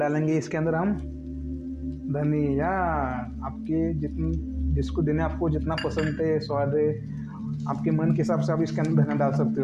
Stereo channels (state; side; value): identical; both; correlation 1.00